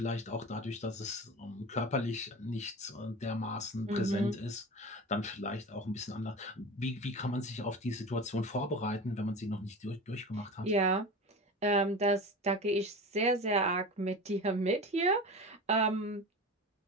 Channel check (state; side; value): normal; both; correlation 0.31